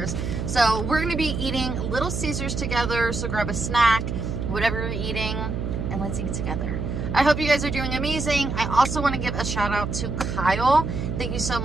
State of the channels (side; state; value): right; noise; hum, 3 dB below the sound